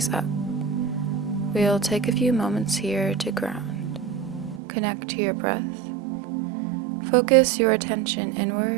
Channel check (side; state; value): left; drops out; at 4.6 s